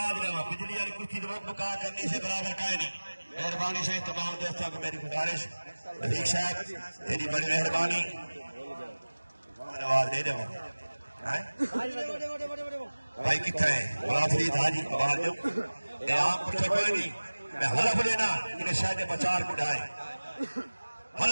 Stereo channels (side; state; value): both; inverted; correlation -1.00